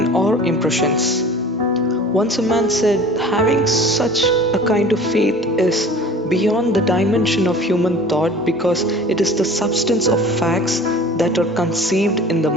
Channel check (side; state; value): both; normal; correlation 0.44